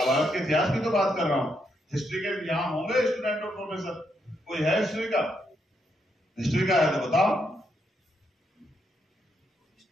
के इतिहास की तो बात कर रहा हूँ। हिस्ट्री के यहाँ होंगे स्टूडेंट और प्रोफेसर, कोई है हिस्ट्री का? हिस्ट्री का है तो बताओ।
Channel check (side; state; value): both; normal; correlation 0.78